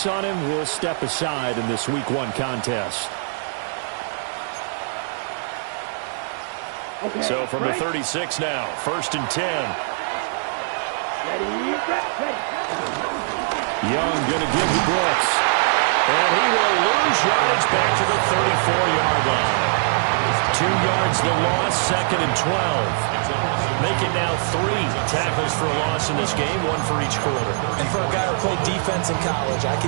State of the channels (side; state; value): left; silent; digital silence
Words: on him, we'll step aside in this Week 1 contest. Okay, So from the 36 now, 1st and 10. Ready. Young going to give to Brooks. And he will lose yardage back to the 34-yard line. 2 yards the loss, 2nd and 12. Make it now 3 tackles for a loss in this game, 1 for each quarter. And for a guy who played defense in college, I can